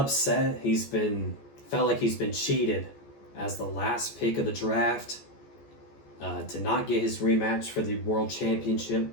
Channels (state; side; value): late; right; 14 ms